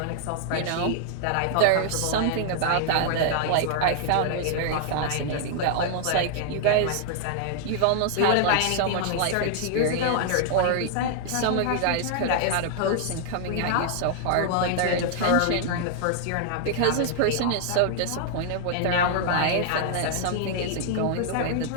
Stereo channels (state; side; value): different; both; correlation -0.01